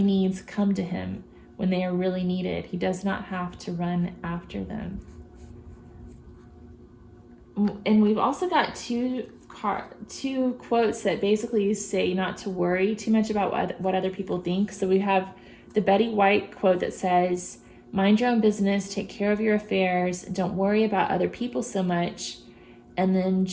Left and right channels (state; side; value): identical; both; correlation 1.00